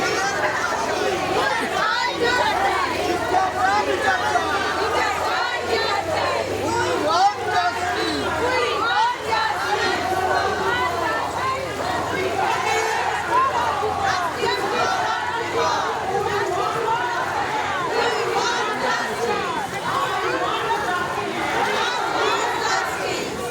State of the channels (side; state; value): both; identical; correlation 1.00